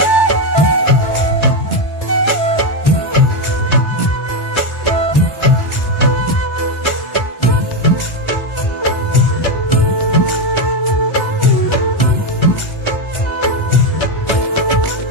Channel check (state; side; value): late; right; 1.4 ms